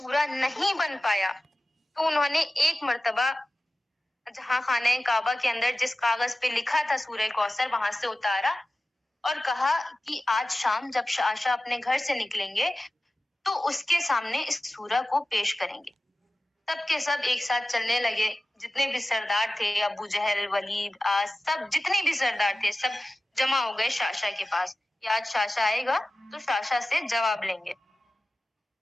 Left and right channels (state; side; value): normal; both; correlation 0.96